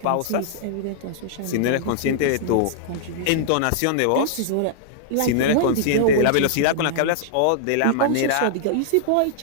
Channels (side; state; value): both; different; correlation -0.01